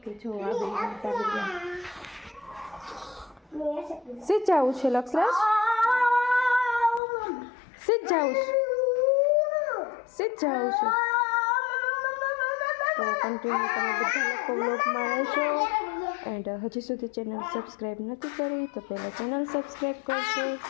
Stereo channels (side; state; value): right; drops out; at 7.0 s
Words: જો આવી સીધ જવું છે લક્ષરાજ, સીધ જવું છે, સીધ જવું છે. તો કન્ટિન્યુ તમે બધા લોકો વ્લોગમાં રહેજો. એન્ડ હજી સુધી ચેનલ સબસ્ક્રાઈબ નથી કરી તો પહેલાં ચેનલ સબસ્ક્રાઈબ કરજો.